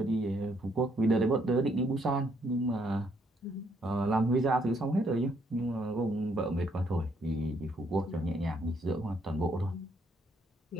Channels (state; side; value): normal; both; correlation 0.71